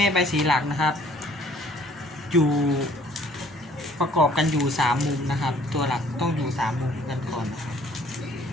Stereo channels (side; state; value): both; normal; correlation 0.58